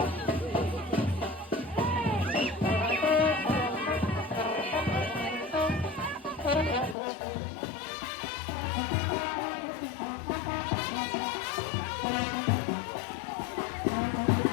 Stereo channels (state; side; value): drops out; right; at 7.0 s